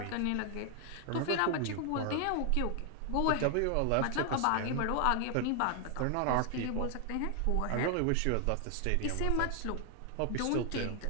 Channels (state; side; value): different; both; correlation 0.00